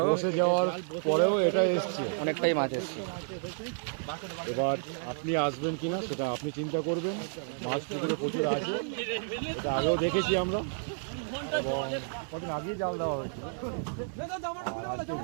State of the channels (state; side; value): silent; left; 57 dB below the other